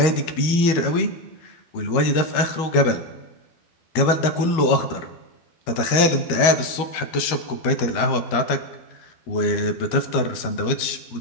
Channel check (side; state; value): right; late; 13 ms